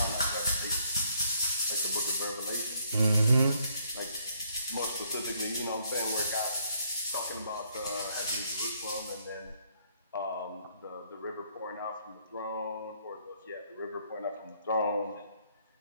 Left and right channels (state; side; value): inverted; both; correlation -0.68